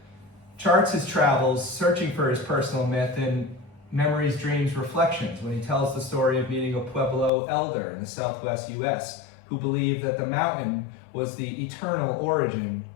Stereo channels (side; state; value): right; drops out; at 7.3 s